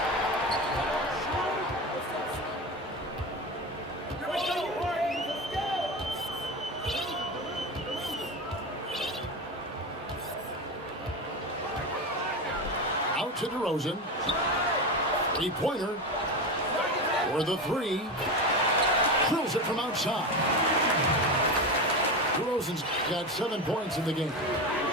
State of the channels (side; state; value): both; normal; correlation 0.21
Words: Out to DeRozan. Three-pointer. For the three. Drills it from outside. DeRozan's got 7 points in the game.